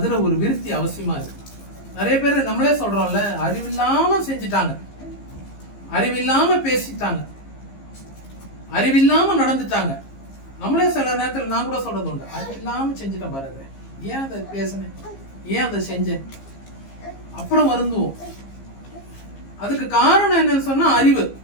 ஒரு விருத்தி அவசியமா இருக்கு. நிறைய பேர் நம்மளே சொல்றோம்ல, அறிவில்லாம செஞ்சுட்டாங்க, அறிவில்லாம பேசிட்டாங்க, அறிவில்லாம நடந்துட்டாங்க. நம்மளே சில நேரத்தில் நான் கூட சொல்றது உண்டு, அறிவில்லாம செஞ்சுட்டேன் பாருங்க, ஏன் அதை பேசினேன், ஏன் அதை செஞ்சேன், அப்புறம் வருந்துவோம். அதுக்கு காரணம் என்னன்னு சொன்னா அறிவு.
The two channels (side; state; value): right; late; 15 ms